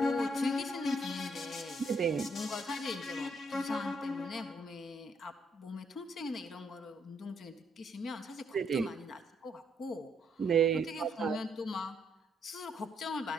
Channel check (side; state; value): both; normal; correlation 0.73